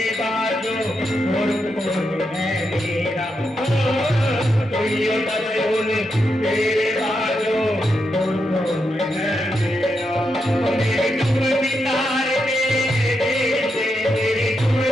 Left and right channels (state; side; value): normal; both; correlation 0.84